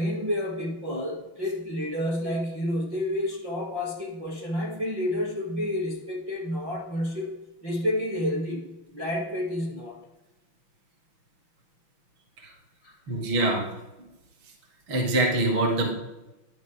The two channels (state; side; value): late; left; 6.0 ms